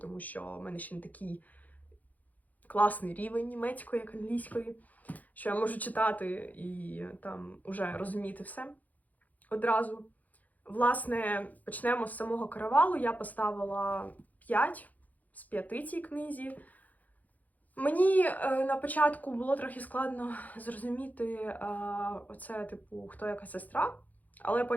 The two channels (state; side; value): late; right; 0.079 ms